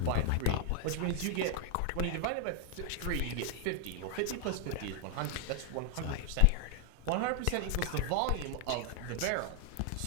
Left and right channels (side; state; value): both; different; correlation 0.00